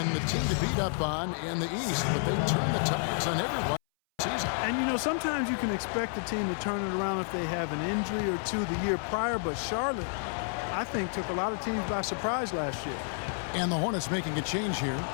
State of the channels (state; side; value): silent; right; 58 dB below the other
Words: the team to beat up on in the East, but they turned the tides on everyone this season. And, you know, sometimes you can expect the team to turn it around if they have an injury or two the year prior, but Charlotte, I think, took a lot of teams by surprise last year. And the Hornets making a change here.